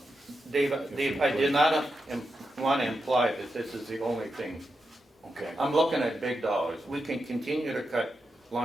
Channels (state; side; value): normal; both; correlation 0.87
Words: Dave, I did not want to imply that this is the only thing. okay. I'm looking at big dollars. We can continue to cut